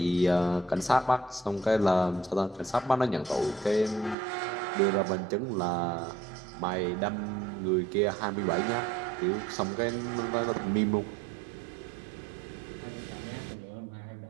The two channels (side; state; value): left; drops out; at 4.2 s